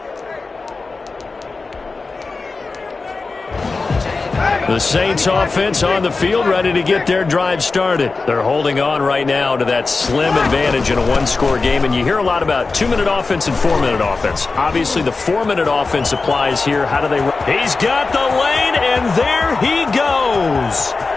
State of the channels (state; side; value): quieter; right; 4.0 dB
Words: The Saints offense on the field, ready to get their drive started. They're holding on right now to that slim advantage in a one-score game, and you hear a lot about 2-minute offense and 4-minute offense. Obviously, the 4-minute offense applies here. How do they run? He's got the lane, and there he goes.